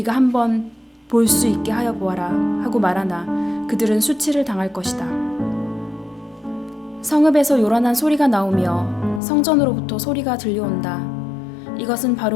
한번 볼 수 있게 하여 보아라 하고 말하나 그들은 수치를 당할 것이다. 성읍에서 요란한 소리가 나오며 성전으로부터 소리가 들려온다. 이것은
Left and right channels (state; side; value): drops out; right; at 9.2 s